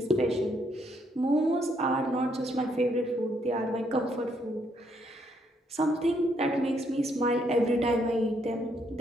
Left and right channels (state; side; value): normal; both; correlation 0.73